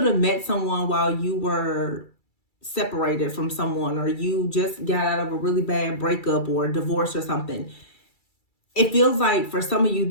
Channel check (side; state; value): right; late; 2.3 ms